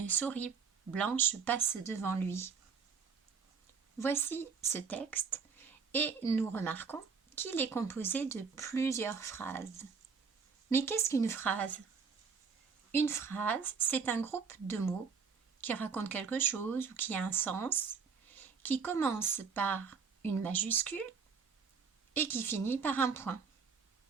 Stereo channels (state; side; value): quieter; left; 5.8 dB